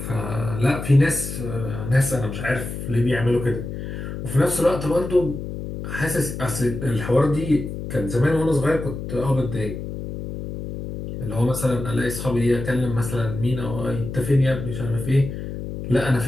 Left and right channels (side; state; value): left; noise; hum, 7 dB below the sound